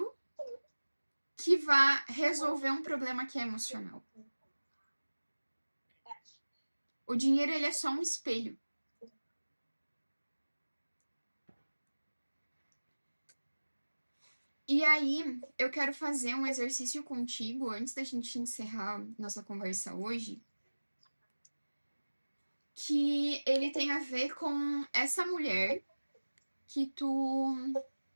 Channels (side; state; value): both; inverted; correlation -1.00